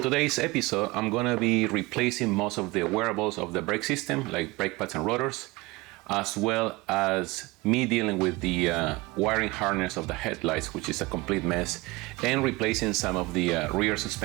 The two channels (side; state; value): left; quieter; 22.9 dB